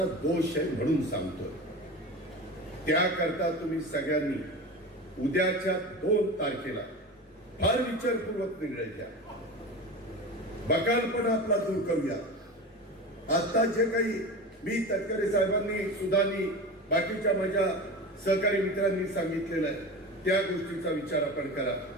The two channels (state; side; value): normal; both; correlation 0.29